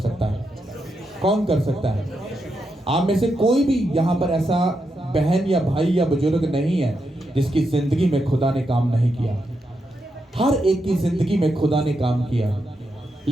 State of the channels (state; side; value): normal; both; correlation 0.84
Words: है? कौन कर सकता है? आप में से कोई भी यहाँ पर ऐसा बहन या भाई या बुजुर्ग नहीं है जिसकी जिंदगी में खुदा ने काम नहीं किया। हर एक की जिंदगी में खुदा ने काम किया,